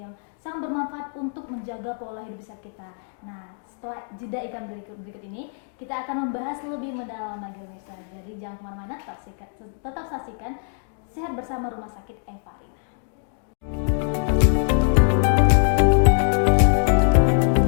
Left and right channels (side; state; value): right; silent; digital silence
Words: sangat bermanfaat untuk menjaga pola hidup sehat kita. Nah, setelah jeda iklan berikut ini, kita akan membahas lebih mendalam lagi pemirsa. Jadi jangan kemana-mana, tetap saksikan Sehat Bersama Rumah Sakit Evarina.